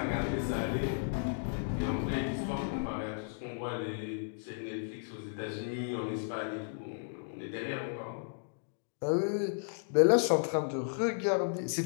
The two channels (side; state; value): right; silent; digital silence